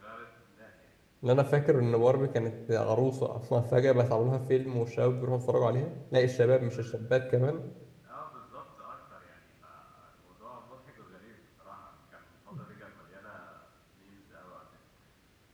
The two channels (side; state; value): both; identical; correlation 1.00